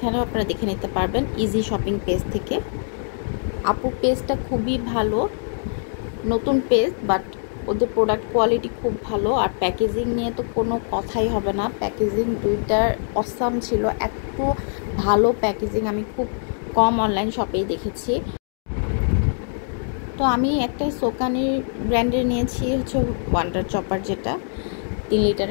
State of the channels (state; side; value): silent; right; digital silence